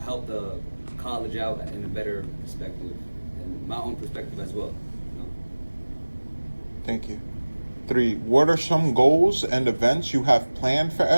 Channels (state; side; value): inverted; both; correlation -1.00